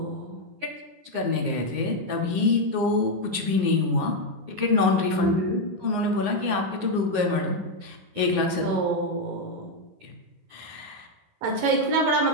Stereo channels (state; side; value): late; left; 9.6 ms